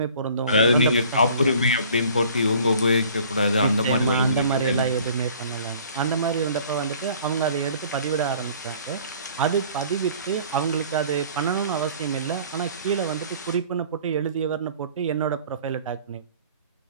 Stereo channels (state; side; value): inverted; both; correlation -0.51